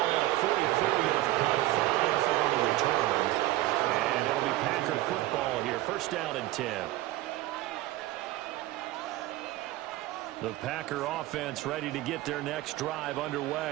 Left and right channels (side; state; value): left; quieter; 16.8 dB